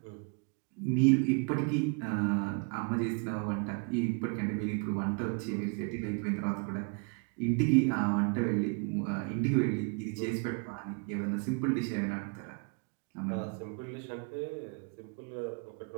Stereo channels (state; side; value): quieter; left; 34.3 dB